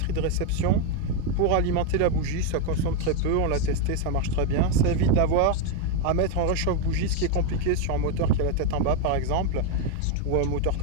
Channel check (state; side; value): different; both; correlation 0.02